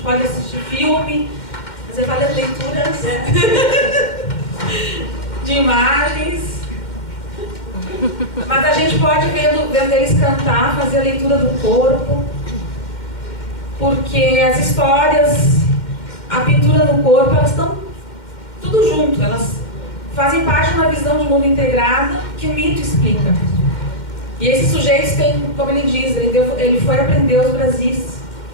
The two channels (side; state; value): right; late; 2.1 ms